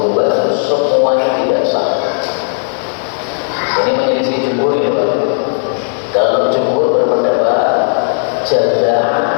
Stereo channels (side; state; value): right; silent; digital silence